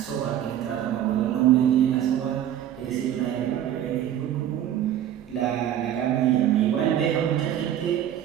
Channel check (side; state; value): left; quieter; 11.1 dB